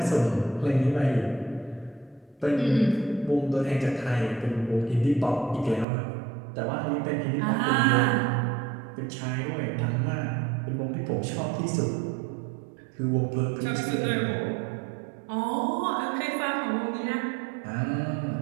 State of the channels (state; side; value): drops out; left; at 5.9 s